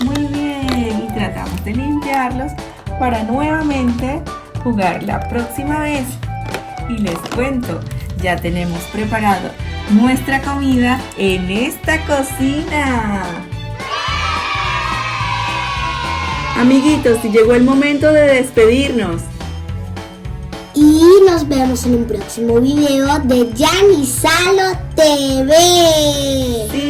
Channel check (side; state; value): both; identical; correlation 1.00